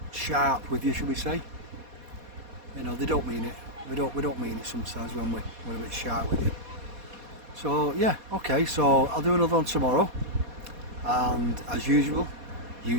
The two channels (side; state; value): left; late; 4.2 ms